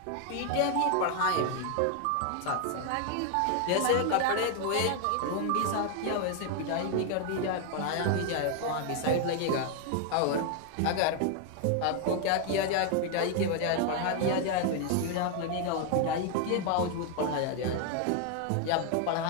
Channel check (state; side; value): different; both; correlation 0.00